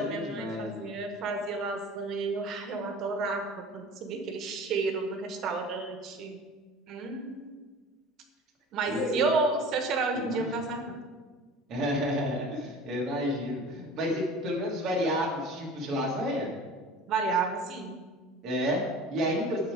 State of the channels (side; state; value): both; normal; correlation 0.40